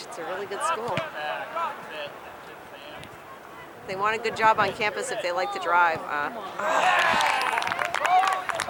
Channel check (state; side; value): identical; both; correlation 1.00